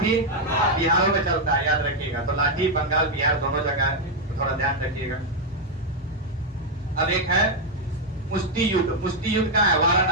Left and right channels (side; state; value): both; normal; correlation 0.01